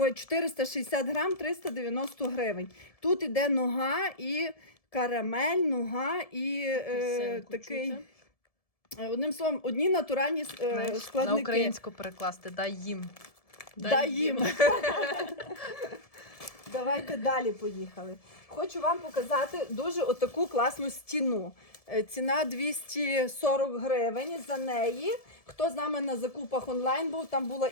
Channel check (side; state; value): right; late; 1.7 ms